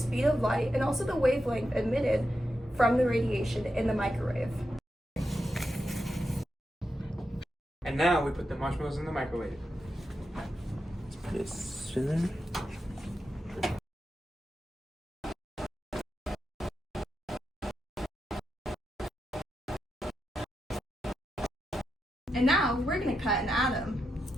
of light and also the wavelength emitted from the radiation in the microwave. And now we put the marshmallows in the microwave. Let's put it spinning. And now we're going to cut an atom.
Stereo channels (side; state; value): both; normal; correlation 0.87